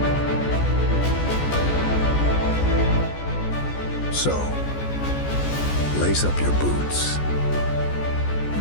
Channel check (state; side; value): late; right; 14 ms